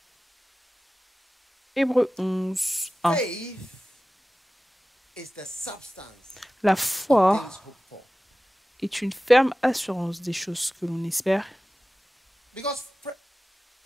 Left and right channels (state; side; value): normal; both; correlation 0.96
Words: Hébreux 11, 1. La foi est une ferme assurance des choses que l'on espère.